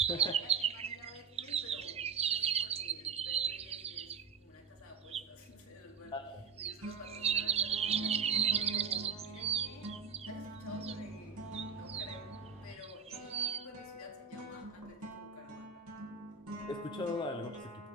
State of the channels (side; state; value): left; quieter; 6.0 dB